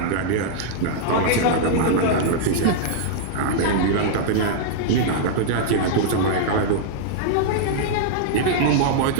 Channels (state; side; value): different; both; correlation -0.02